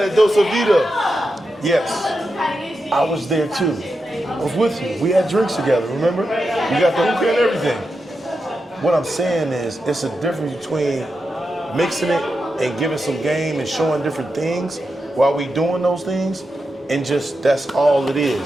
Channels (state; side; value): normal; both; correlation 0.88